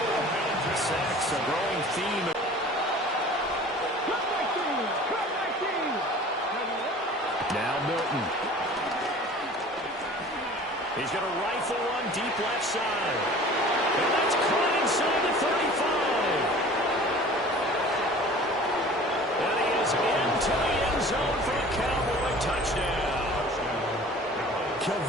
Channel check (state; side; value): normal; both; correlation 0.44